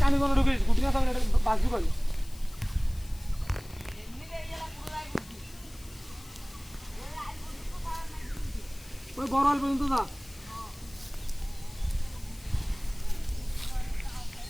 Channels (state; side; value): noise; left; hiss, 21 dB below the sound